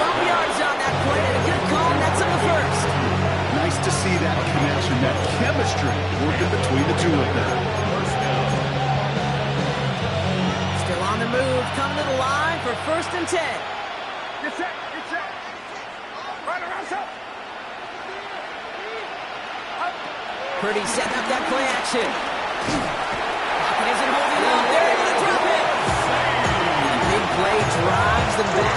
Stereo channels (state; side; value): identical; both; correlation 1.00